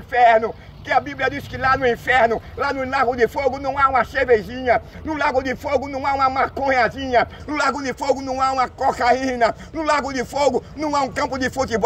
Que a Bíblia diz que lá no inferno, lá no lago de fogo não há uma cervejinha, no lago de fogo não há uma maconhazinha, no lago de fogo não há uma cocaína, no lago de fogo não há um campo de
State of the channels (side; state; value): both; identical; correlation 1.00